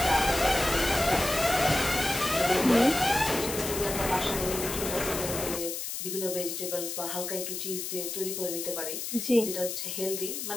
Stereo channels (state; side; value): noise; left; hiss, 5 dB below the sound